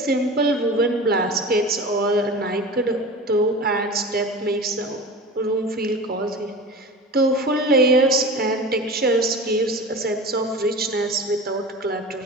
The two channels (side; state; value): both; normal; correlation 0.33